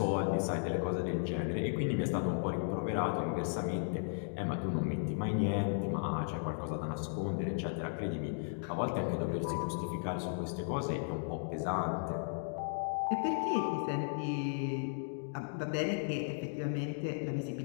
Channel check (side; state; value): right; silent; digital silence